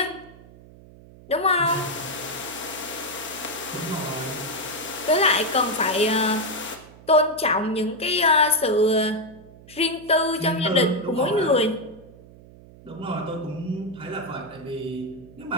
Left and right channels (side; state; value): right; noise; hum, 21 dB below the sound